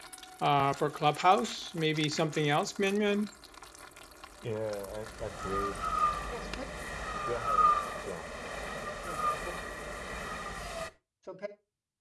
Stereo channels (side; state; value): both; identical; correlation 1.00